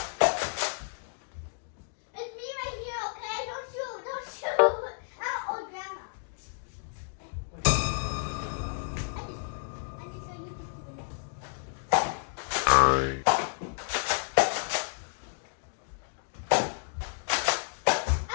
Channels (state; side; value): silent; right; digital silence